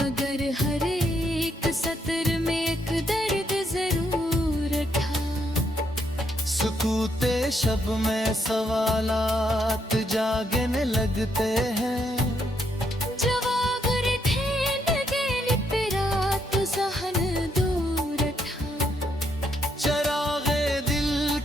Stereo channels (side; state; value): both; normal; correlation 0.76